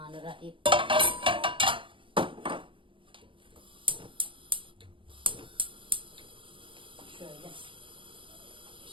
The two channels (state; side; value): late; left; 0.25 ms